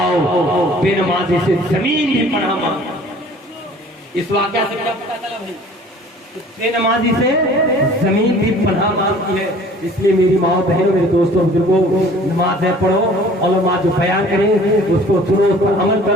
बेनमाजी से जमीन भी पनाह मांगी। इस वाकया से क्या पता चला भाई? बेनमाजी से जमीन भी पनाह मांगती है। इसलिए मेरी माँ बहनों मेरे दोस्तों बुजुर्गों, नमाज है पढ़ो, उलमा जो बयान करें उसको सुनो, उस पर अमल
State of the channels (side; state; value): both; normal; correlation 0.50